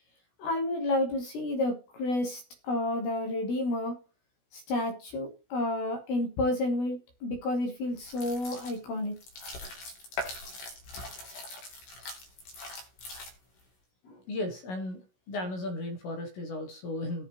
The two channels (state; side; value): late; right; 16 ms